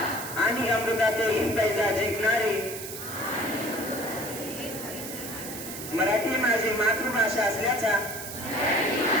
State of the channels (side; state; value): right; noise; hiss, 9 dB below the sound